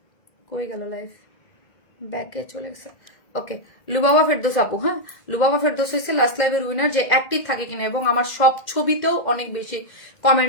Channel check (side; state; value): right; late; 2.1 ms